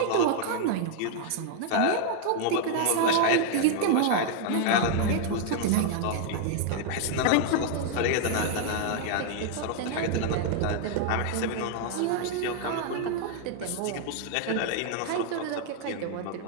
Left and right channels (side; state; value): both; different; correlation 0.00